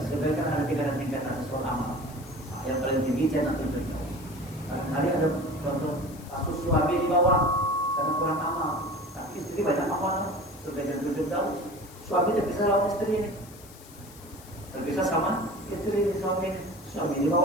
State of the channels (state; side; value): noise; left; hiss, 20 dB below the sound